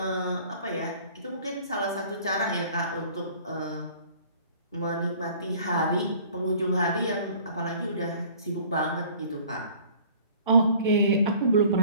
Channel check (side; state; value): both; inverted; correlation -0.51